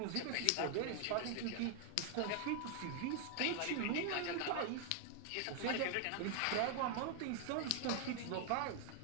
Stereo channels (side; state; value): both; different; correlation 0.00